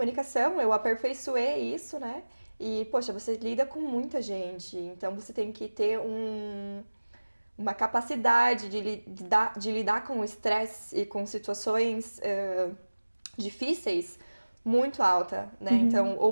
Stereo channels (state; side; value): inverted; both; correlation -1.00